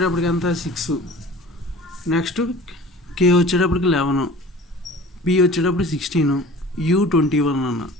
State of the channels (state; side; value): normal; both; correlation 0.43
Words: ఎంత 6, నెక్స్ట్ కే వచ్చేటప్పటికి 11, పి వచ్చేటప్పుడు 16, యూ 21 అన్న.